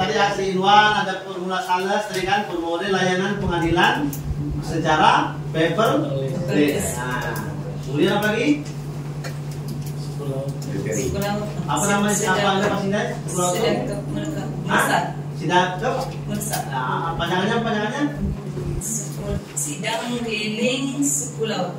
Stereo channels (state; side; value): identical; both; correlation 1.00